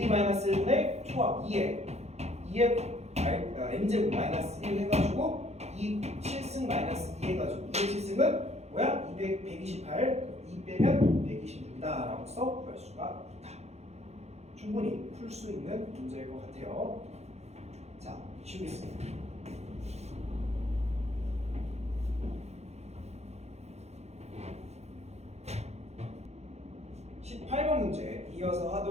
초합 2의 n제곱 마이너스 1 해가지고 2 7승 마이너스 2 해가지고 2의 뭐야? 128 2 빼면 126이다 라고 써 구할 수가 있다. 충분히 풀 수 있는 문제일 것 같아요. 자, 쉬우겠습니다. 18번 문제 이어서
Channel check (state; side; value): late; left; 0.31 ms